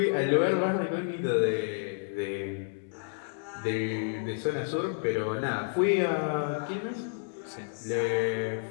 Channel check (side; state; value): right; silent; digital silence